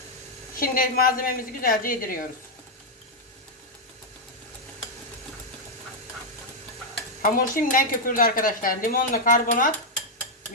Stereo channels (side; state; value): both; normal; correlation -0.02